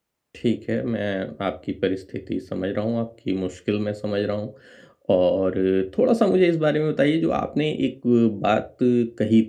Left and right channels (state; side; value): identical; both; correlation 1.00